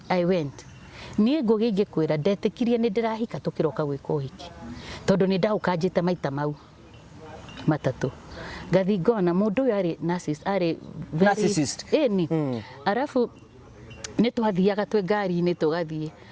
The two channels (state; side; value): identical; both; correlation 1.00